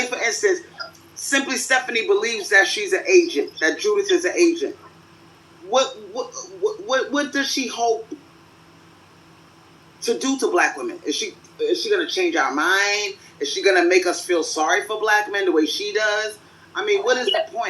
for instance, Simply Stephanie believes that she's an agent, that Judith is an agent. What does she hope to do to black women? Is she gonna change our mind? Is she gonna make us feel sorry for black men the way she does? I mean, what is the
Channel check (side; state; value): both; identical; correlation 1.00